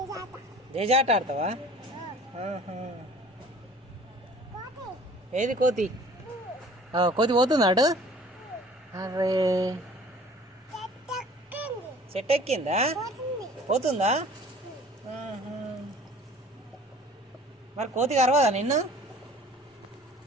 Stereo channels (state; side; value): normal; both; correlation 0.48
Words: జేజాట ఆడతావా? ఏది కోతి? కోతి పోతుందా అటు? అరే చెట్టు ఎక్కిందా? పోతుందా? మరి కోతి కరవదా నిన్ను?